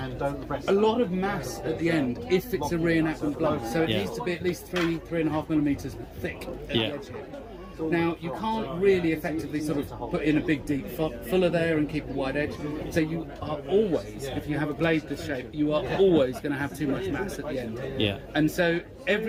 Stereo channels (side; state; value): both; identical; correlation 1.00